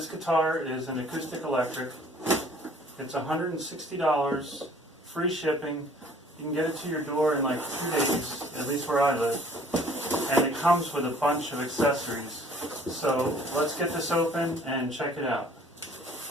guitar is an acoustic electric. It's $160, free shipping. You can get it to your door in like 2 days, at least where I live. And it comes with a bunch of accessories. So let's get this open and check it out.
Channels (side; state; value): both; normal; correlation 0.55